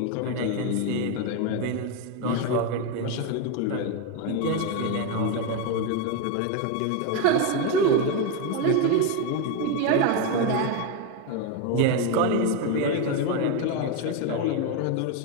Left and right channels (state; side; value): different; both; correlation 0.02